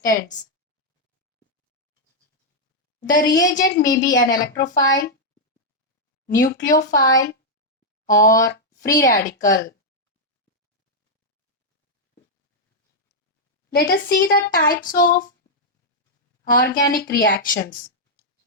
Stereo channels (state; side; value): normal; both; correlation -0.04